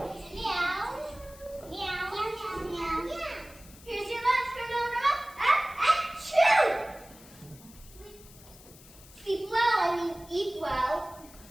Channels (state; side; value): noise; left; hiss, 21 dB below the sound